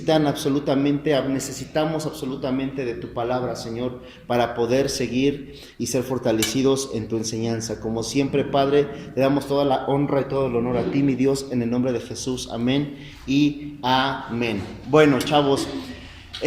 absolutamente de tu palabra, Señor, para poder seguir y ser fortalecidos en tu enseñanza. Como siempre, Padre, le damos toda la honra y todo el honor a ti, mi Dios, en el nombre de Jesús. Amén y amén. Bueno, chavos,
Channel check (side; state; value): both; identical; correlation 1.00